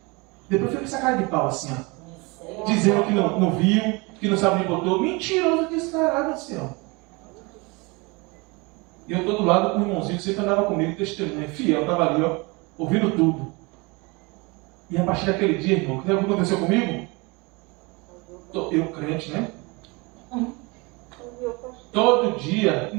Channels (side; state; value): left; quieter; 27.1 dB